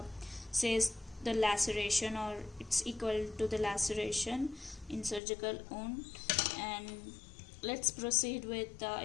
says the laceration, or it's equal to the laceration in surgical wound. And let's proceed with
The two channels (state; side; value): drops out; right; at 5.2 s